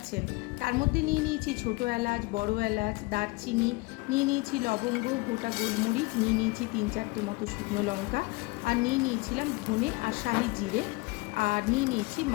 তার মধ্যে নিয়ে নিয়েছি ছোটো এলাচ, বড় এলাচ, দারচিনি, নিয়ে নিয়েছি লবঙ্গ, গোটা গোলমরিচ, নিয়ে নিয়েছি 3-4টে মতো শুকনো লঙ্কা, আর নিয়ে নিয়েছিলাম ধনে আর শাহি জিরে, আর নিয়ে নিয়েছি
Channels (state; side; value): quieter; right; 24.3 dB